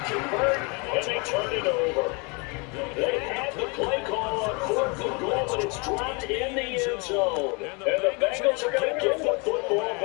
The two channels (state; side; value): quieter; right; 31.1 dB